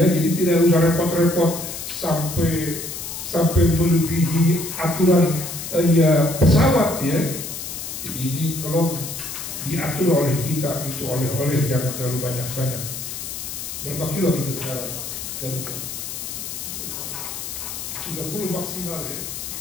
jadi tidak usah repot-repot sampai melebihi aturan ya pesawat ya. Jadi ini tolong diatur oleh kita, itu oleh-oleh jangan terlalu banyak-banyak. Berapa kilo kita sekarang? 30 maksimal ya.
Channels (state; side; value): noise; left; hiss, 7 dB below the sound